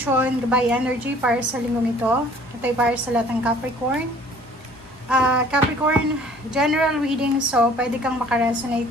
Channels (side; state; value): both; normal; correlation 0.53